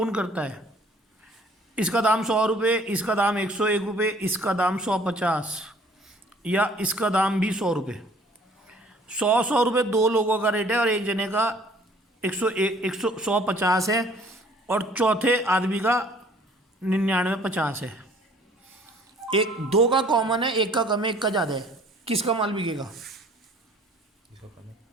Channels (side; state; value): both; normal; correlation 0.55